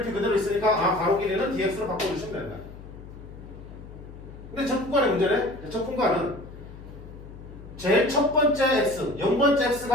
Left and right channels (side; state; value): left; noise; hum, 15 dB below the sound